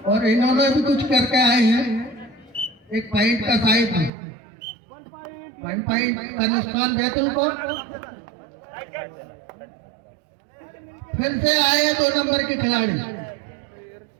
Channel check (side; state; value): left; drops out; at 4.1 s